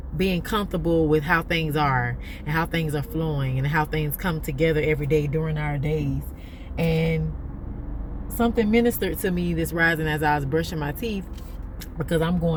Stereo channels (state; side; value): identical; both; correlation 1.00